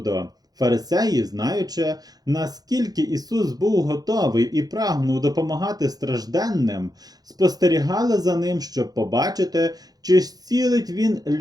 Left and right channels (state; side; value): late; left; 0.19 ms